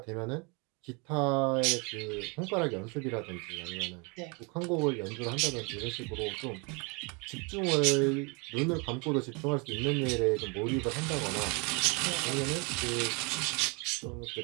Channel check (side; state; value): left; quieter; 31.2 dB